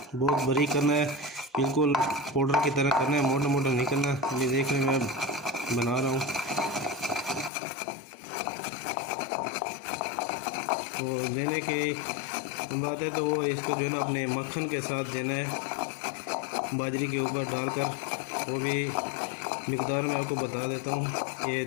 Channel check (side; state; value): right; drops out; at 7.5 s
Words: बहुत बारीक करना है, बिल्कुल पाउडर की तरह करना है, मोटा मोटा नहीं करना। ये देख रहे मैं बना रहा हूँ। तो देने की बात है तो वो इसको जो है ना अपने मक्खन के साथ देना है, बाजरी के ऊपर डालकर। वो भी मिकदार में आपको बता देता हूँ, ये